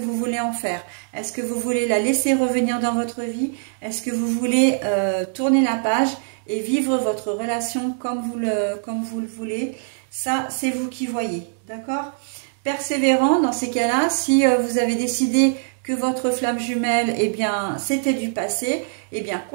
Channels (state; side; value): silent; left; digital silence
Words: voulez en faire. Est-ce que vous voulez la laisser revenir dans votre vie? Est-ce que vous voulez tourner la page et vivre votre relation comme vous le voulez? Ça, c'est vous qui voyez, d'accord? Persévérant, dans ces cas-là, si vous avez décidé que votre flamme jumelle, eh bien, c'était du passé, eh bien,